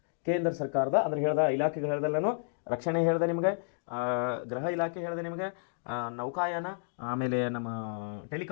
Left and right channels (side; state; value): right; silent; digital silence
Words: ಕೇಂದ್ರ ಸರ್ಕಾರದ ಅಂದ್ರೆ ಹೇಳ್ದ ಇಲಾಖೆಗಳು ಹೇಳ್ದಲ್ಲ, ನಾನು ರಕ್ಷಣೆ ಹೇಳಿದೆ ನಿಮಗೆ, ಗೃಹ ಇಲಾಖೆ ಹೇಳಿದೆ ನಿಮಗೆ, ನೌಕಾಯಾನ, ಆಮೇಲೆ ನಮ್ಮ